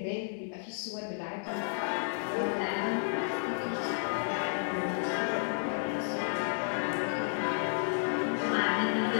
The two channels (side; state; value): right; silent; digital silence